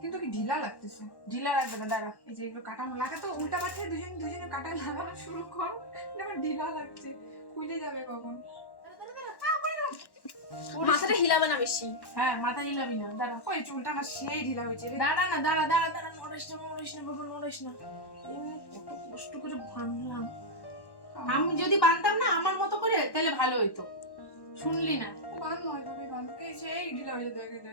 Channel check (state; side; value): late; right; 1.1 ms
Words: কিন্তু কি ঢিলা লাগতেছে। ঢিলা রাখবে না, দাঁড়া। এই যে এগুলো কাটা লাগা তো উল্টা পাল্টে দুজনে কাটা লাগানো শুরু কর, আমার ঢিলা লাগছে, খুলে যাবে কখন। মাথাটা হিলাবে না বেশি। হ্যাঁ, মাথা হিলাবি না, দাঁড়া। ওই চুলটা আমার সেই ঢিলা হয়েছে রে। দাঁড়া না, দাঁড়া দাঁড়া দাঁড়া, নড়িস না নড়িস না বাবা, নড়িস না। এমনি কত কষ্ট করে বানলাম, আমি যদি বানতাম না আমার মতো করে তাহলে ভালো হইতো। শুনলি না? বান নয় তবে বানকে সেই ঢিলা হয়ে যায়,